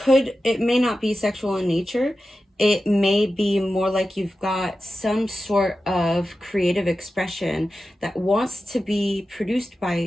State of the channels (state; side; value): normal; both; correlation 0.93